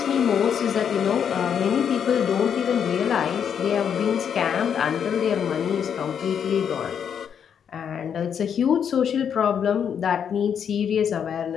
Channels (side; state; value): right; quieter; 7.9 dB